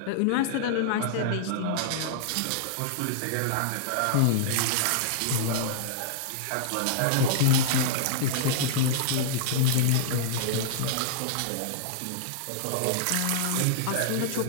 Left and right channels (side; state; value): both; different; correlation -0.01